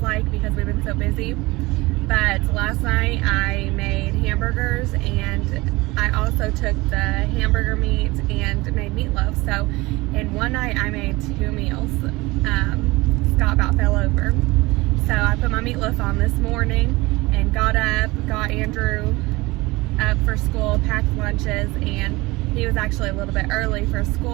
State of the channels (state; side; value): quieter; left; 21.9 dB